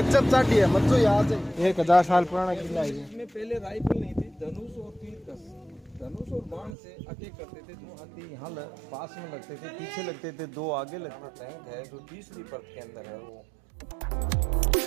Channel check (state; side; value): drops out; left; at 6.8 s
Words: चाटी है मत यहाँ से 1000 साल पुराना किला है। इसमें पहले राइफल नहीं थी, धनुष और तीर धनुष और बाण से अटैक करते थे। दो हाथी यहाँ पास में लगते थे, पीछे लगते थे, दो आगे लगते। टैंक है जो तीसरी परत के अंदर है वो।